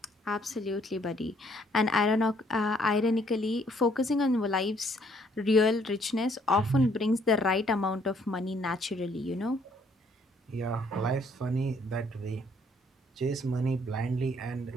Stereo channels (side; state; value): both; normal; correlation 0.65